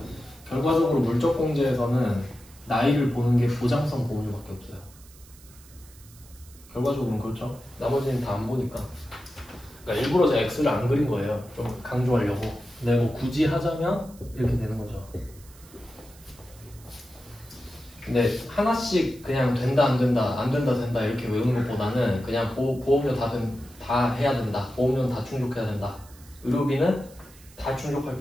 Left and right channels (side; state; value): right; noise; hiss, 23 dB below the sound